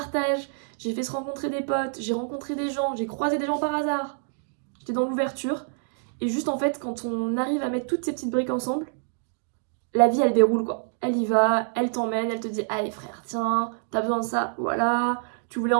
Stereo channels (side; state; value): left; silent; digital silence